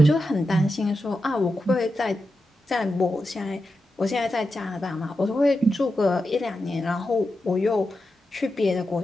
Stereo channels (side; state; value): both; normal; correlation 0.89